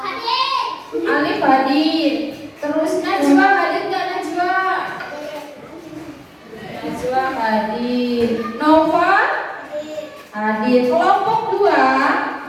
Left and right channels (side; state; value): both; identical; correlation 1.00